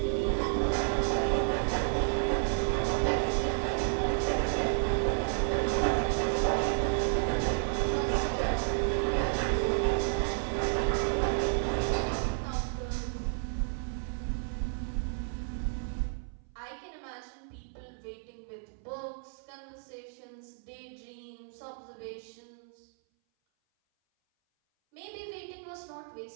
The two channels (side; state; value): left; silent; 57 dB below the other